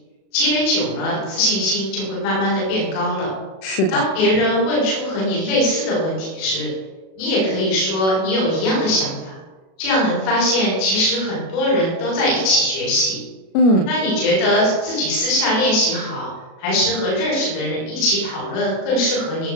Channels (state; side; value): late; right; 37 ms